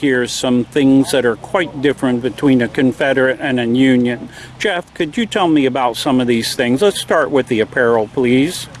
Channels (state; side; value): identical; both; correlation 1.00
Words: some things that are quite different between a Confederate and a Union. Jeff, could you tell me about some of these things? Let's start with the apparel, please.